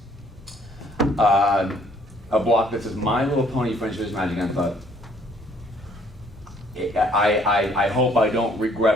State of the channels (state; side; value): normal; both; correlation 0.62